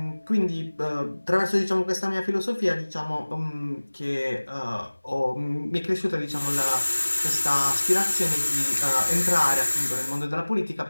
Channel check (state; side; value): inverted; both; correlation -1.00